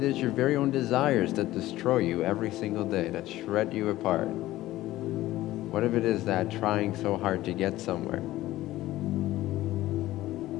is your very own desires that destroy you every single day, that shred you apart? What if it is that trying so hard to get somewhere,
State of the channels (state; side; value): quieter; right; 16.0 dB